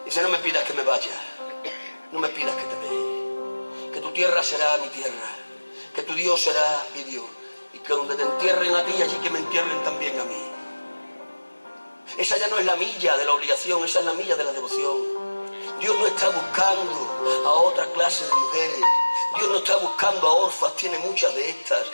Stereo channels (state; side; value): inverted; both; correlation -1.00